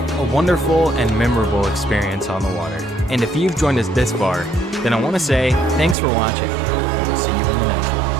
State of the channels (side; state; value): left; drops out; at 6.0 s